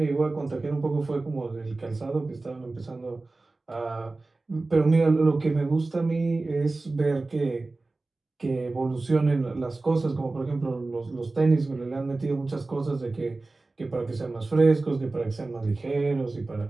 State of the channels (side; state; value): left; quieter; 3.3 dB